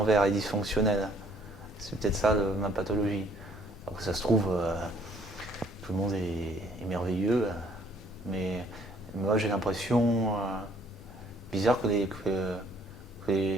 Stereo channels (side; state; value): both; normal; correlation 0.62